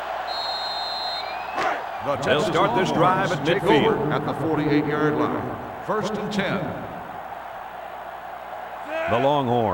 They'll start this drive at midfield. At the 48-yard line. First and 10. The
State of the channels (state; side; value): identical; both; correlation 1.00